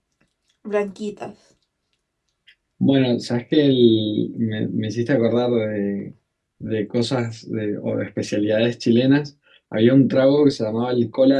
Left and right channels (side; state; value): both; identical; correlation 1.00